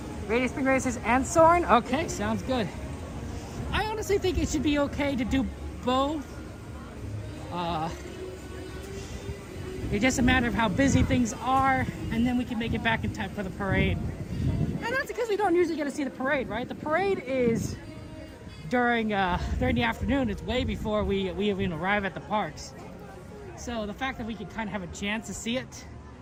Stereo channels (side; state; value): both; identical; correlation 1.00